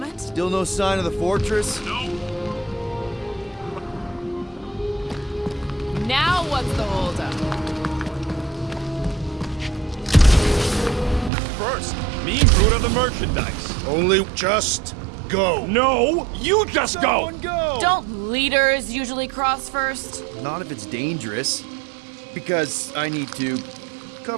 Still no sign of the fortress? No. Now what's the holdup? First, me and Groot are the merchandise. Only just go. No, you just go! Don't leaders usually cross first? Not if it's dangerous. Because I need to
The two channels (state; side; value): drops out; left; at 11.3 s